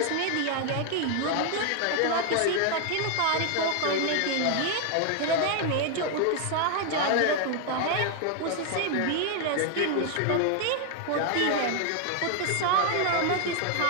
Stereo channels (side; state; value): both; different; correlation 0.01